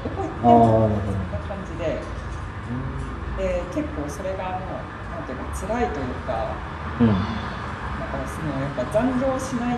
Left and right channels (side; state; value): both; identical; correlation 1.00